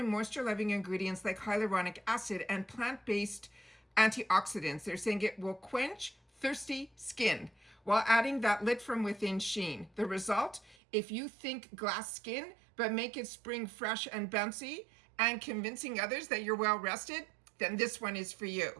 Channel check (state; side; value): drops out; left; at 10.8 s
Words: moisture-loving ingredients like hyaluronic acid and plant-based antioxidants. They're saying it will quench thirsty skin while adding that lit from within sheen. The result, if you think glass skin, but make it spring fresh and bouncy and convincing others that you're well rested, then this one is for